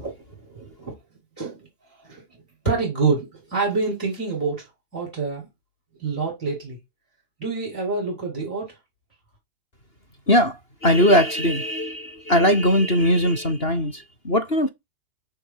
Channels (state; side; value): late; right; 2.8 ms